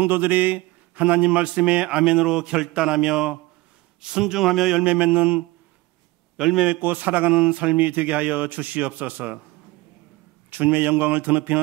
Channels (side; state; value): left; quieter; 20.1 dB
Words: 하나님 말씀에 아멘으로 결단하며 순종하며 열매 맺고 살아가는 삶이 되게 하여 주시옵소서. 주님의 영광을